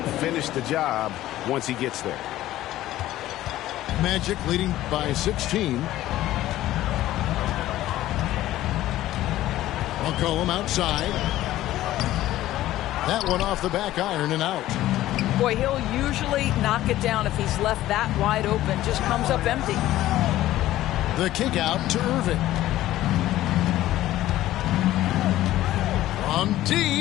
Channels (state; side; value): quieter; right; 14.7 dB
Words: finished the job once he gets there. Magic leading by 16. McCollum outside. That one off the back iron and out. Boy, he'll usually knock it down if he's left that wide open. Just comes up empty. The kick out to Irving. From